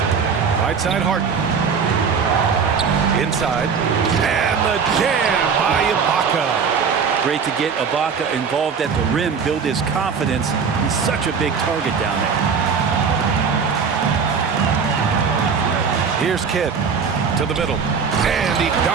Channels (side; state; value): left; quieter; 6.0 dB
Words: Right side Harden. Inside. And the jam by Ibaka. Great to get Ibaka involved at the rim, build his confidence. He's such a big target down there. Here's Kidd to the middle. And he